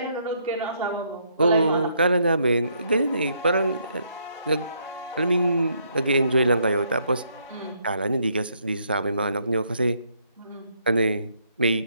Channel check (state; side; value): inverted; both; correlation -0.71